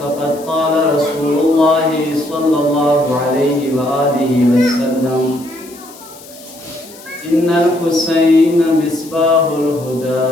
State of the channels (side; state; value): left; noise; hiss, 20 dB below the sound